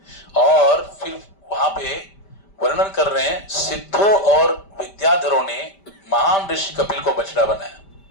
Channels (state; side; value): late; right; 5.1 ms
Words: और फिर वहां पे वर्णन कर रहे हैं, सिद्धों और विद्याधरों ने महान ऋषि कपिल को बछड़ा बनाया,